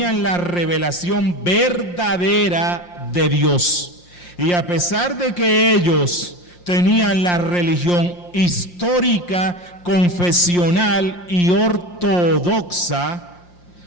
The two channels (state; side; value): late; right; 5.7 ms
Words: la revelación verdadera de Dios. Y a pesar de que ellos tenían la religión histórica, confesional y ortodoxa,